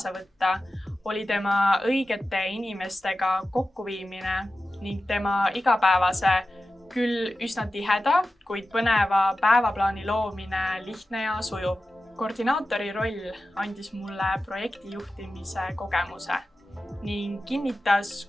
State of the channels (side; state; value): both; normal; correlation 0.93